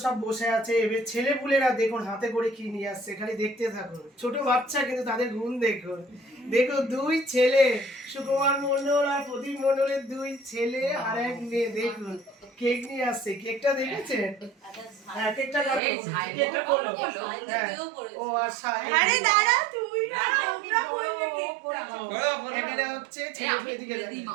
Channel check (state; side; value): drops out; left; at 15.8 s